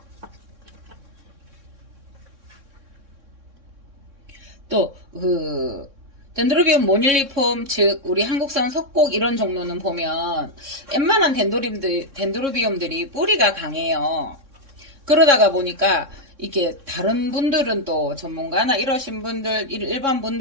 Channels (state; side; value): late; left; 3.6 ms